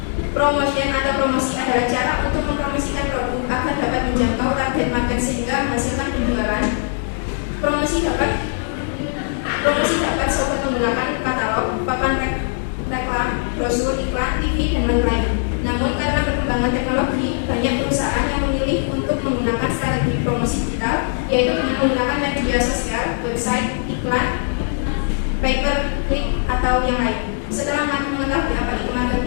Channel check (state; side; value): silent; right; digital silence